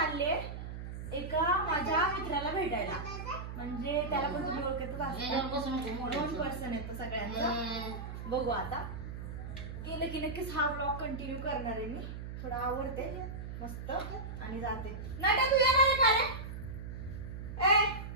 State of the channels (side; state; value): right; noise; hum, 8 dB below the sound